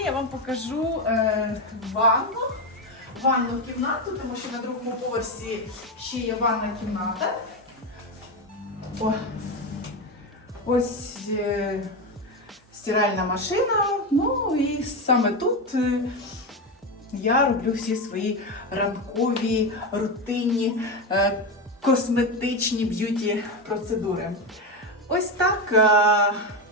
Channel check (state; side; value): normal; both; correlation 0.14